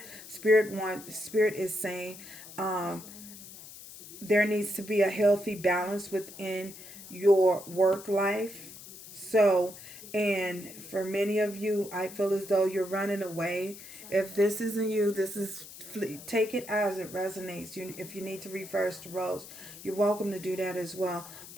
Spirit is saying there needs to be a healthy balance within your work life. So, and for many of you, I feel as though you're running away. If this isn't you, take it as it resonates. If you need to reverse the roles, you're welcome to do that as well.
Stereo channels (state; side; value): noise; left; hiss, 15 dB below the sound